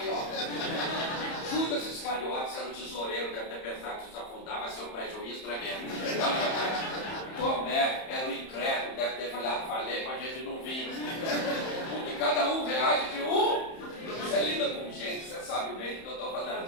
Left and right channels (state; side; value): late; right; 31 ms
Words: Judas Iscariotes era o tesoureiro, deve ter pensado que se afundar vai ser um prejuízo tremendo. Tomé era o incrédulo, deve ter falado, falei para a gente não vir. Porque cada um reage de um. Você lida com gente, você sabe bem do que eu estou